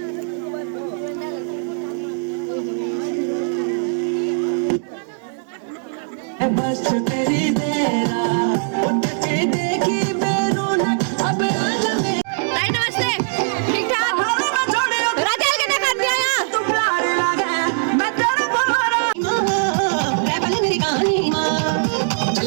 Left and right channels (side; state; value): left; silent; digital silence